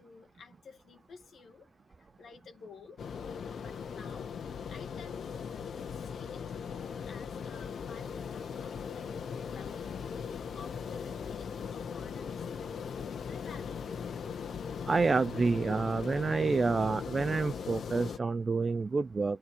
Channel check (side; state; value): both; normal; correlation 0.88